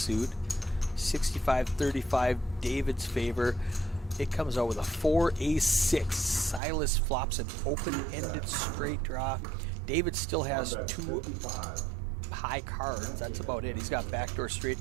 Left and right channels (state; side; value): drops out; left; at 6.6 s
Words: 65-35 David's favor. It comes out with a 4 ace 6. Silas flops an open-ended straight draw. David still has 2 high cards. That's about it. He's got backdoor straight